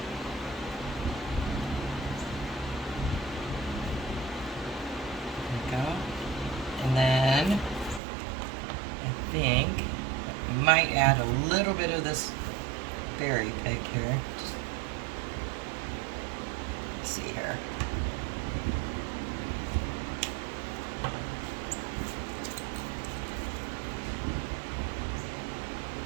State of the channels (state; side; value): drops out; left; at 8.0 s